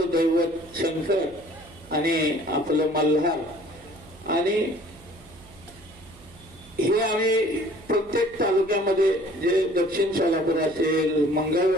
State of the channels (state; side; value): noise; right; hum, 23 dB below the sound